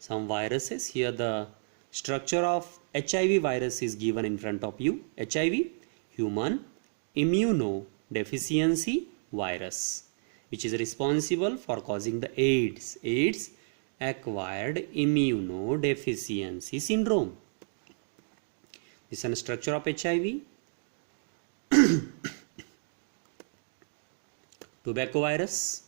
viruses. Here the structure of HIV virus is given in front of you. HIV, human immunodeficiency virus, which is responsible for causing the AIDS, acquired immunodeficiency syndrome. This is a structure of HIV. Tobacco virus,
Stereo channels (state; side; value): silent; left; digital silence